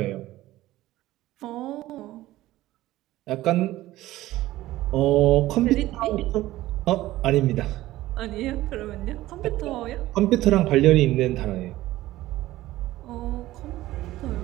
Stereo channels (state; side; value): quieter; left; 16.1 dB